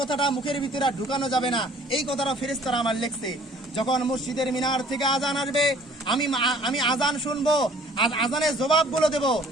মুখের ভিতরে ঢুকানো যাবে না, এই কথাটা ফেরেশতারা আমার লিখছে। যখন মসজিদের মিনার থেকে আজান আসবে আমি আজান শুনবো, আর আজানের জবাবগুলো দেবো,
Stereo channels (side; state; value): both; normal; correlation 0.54